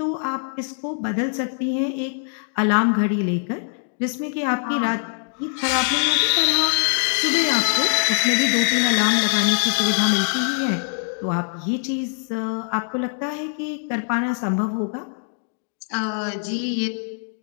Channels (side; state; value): right; silent; 59 dB below the other